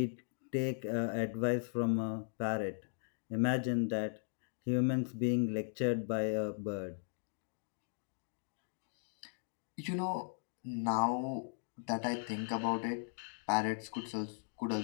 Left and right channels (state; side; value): silent; right; digital silence